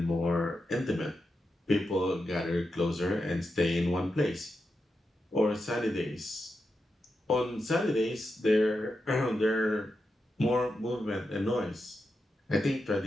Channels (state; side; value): normal; both; correlation 0.88